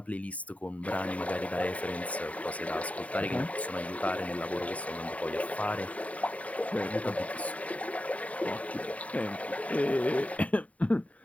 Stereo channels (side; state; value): right; late; 0.068 ms